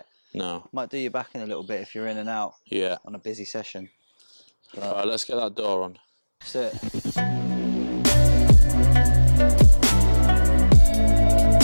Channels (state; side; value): inverted; both; correlation -1.00